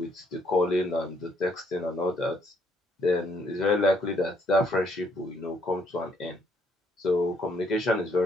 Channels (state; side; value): normal; both; correlation 0.69